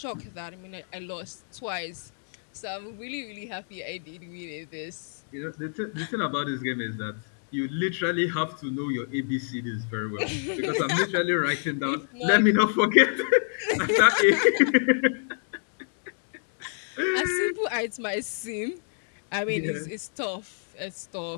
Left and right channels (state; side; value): silent; right; digital silence